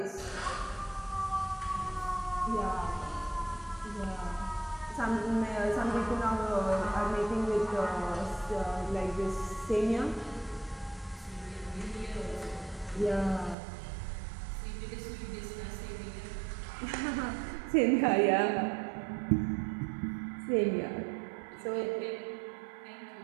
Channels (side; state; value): left; drops out; at 13.6 s